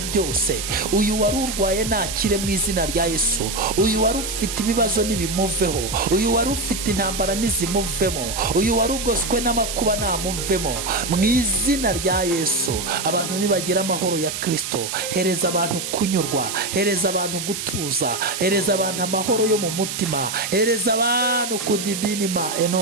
byose. Uyu wari urwaye nakire mu izina rya Yesu. Uyu wari ufite ibibazo nibimuveho. Uyu wari ufite intambara nizimuvemo. Uyu wari ugoswe n'amakuba namuvemo mu izina rya Yesu. Abantu nibagira amahoro ya Kristo. Hereza abantu kunyurwa, hereza abantu gutuza, hereza abantu amahoro yo mu mutima, hereza abantu kudibinima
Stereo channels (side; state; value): right; noise; hiss, 5 dB below the sound